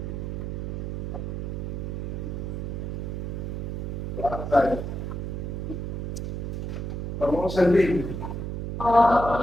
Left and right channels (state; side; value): noise; right; hum, 3 dB below the sound